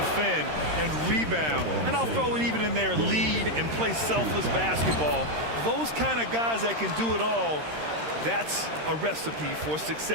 and rebound. And I'll throw it even in there, lead and play selfless basketball. Those kind of guys that can do it all, that's a recipe for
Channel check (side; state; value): left; late; 13 ms